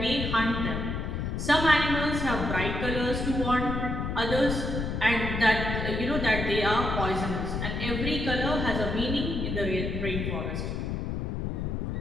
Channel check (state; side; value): noise; left; rumble, 2 dB below the sound